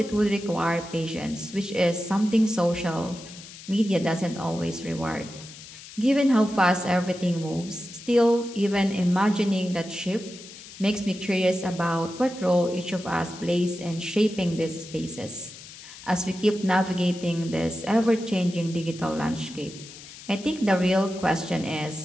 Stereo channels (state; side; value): noise; left; hiss, 16 dB below the sound